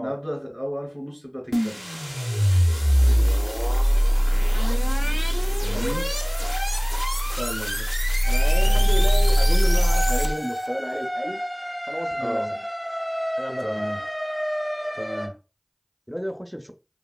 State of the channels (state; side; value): identical; both; correlation 1.00